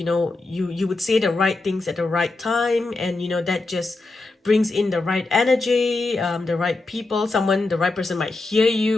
know, you would say the right things at the right time, and you know that just brings in the right energy, the right people. The right person might hear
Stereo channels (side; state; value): right; quieter; 3.3 dB